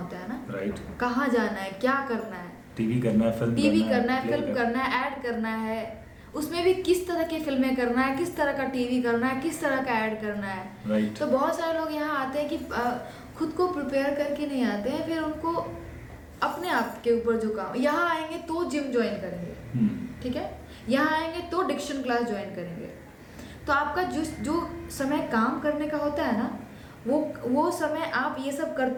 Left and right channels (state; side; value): identical; both; correlation 1.00